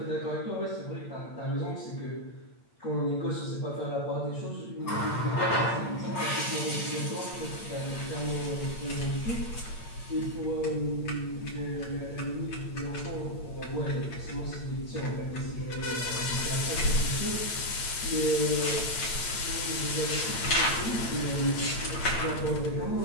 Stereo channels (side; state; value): right; late; 8.8 ms